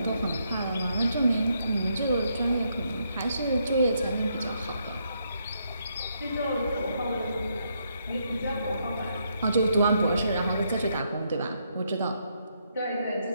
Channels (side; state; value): both; inverted; correlation -0.76